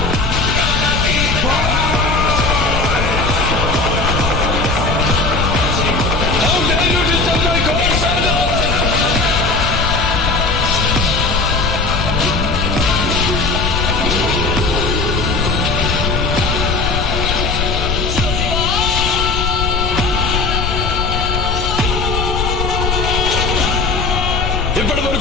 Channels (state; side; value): noise; left; rumble, 2 dB below the sound